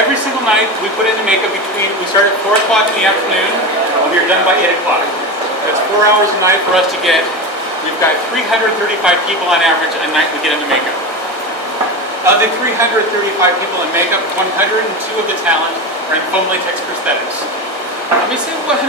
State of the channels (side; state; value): both; normal; correlation 0.22